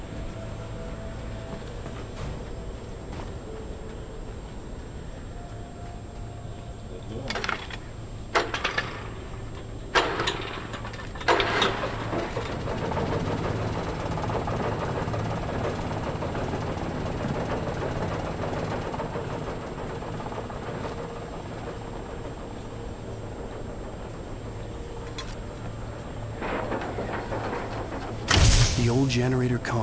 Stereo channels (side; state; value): both; identical; correlation 1.00